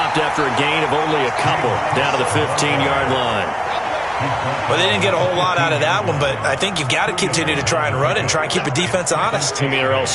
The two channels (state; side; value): identical; both; correlation 1.00